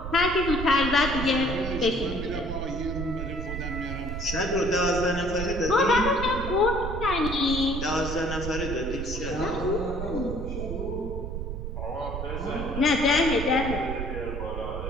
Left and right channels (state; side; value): noise; right; rumble, 5 dB below the sound